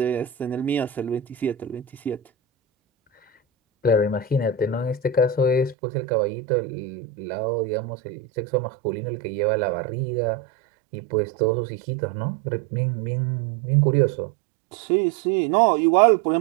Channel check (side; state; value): left; drops out; at 5.8 s